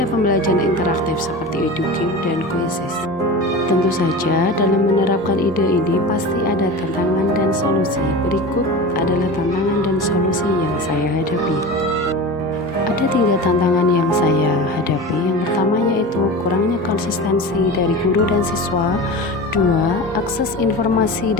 pembelajaran interaktif seperti EduGame dan Quizzes. Tentu saja dalam menerapkan ide ini pasti ada tantangan dan solusi. Berikut adalah tantangan dan solusi yang saya hadapi. Ada 3 tantangan yang saya hadapi. Yang pertama yaitu kurangnya konsistensi dari guru dan siswa. 2. Akses informasi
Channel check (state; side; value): normal; both; correlation 0.30